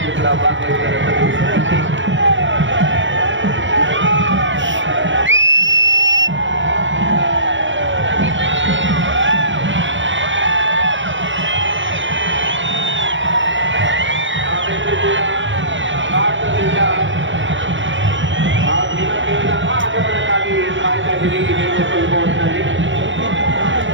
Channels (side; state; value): left; late; 0.55 ms